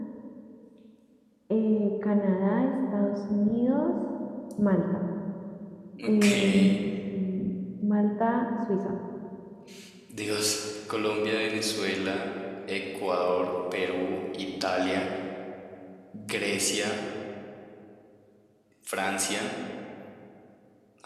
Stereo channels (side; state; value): both; identical; correlation 1.00